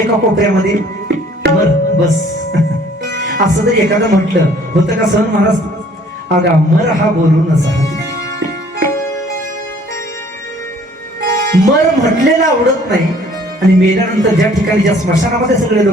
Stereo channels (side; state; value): both; normal; correlation 0.57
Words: कोपऱ्यामध्ये मर बस. असं जर एखादं म्हटलं होतं का सहन महाराज? अगा मर हा बोलून असा. मर म्हटलेला आवडत नाही आणि मेल्यानंतर ज्या ठिकाणी ज्या स्मशानामध्ये सगळे